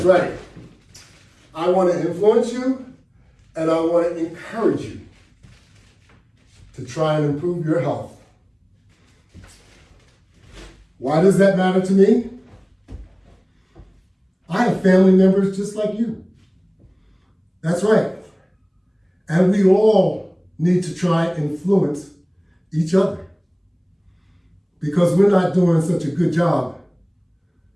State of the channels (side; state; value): both; identical; correlation 1.00